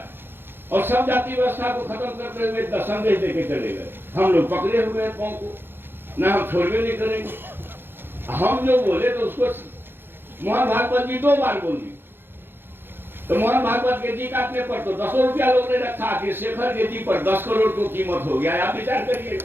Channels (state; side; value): late; left; 0.10 ms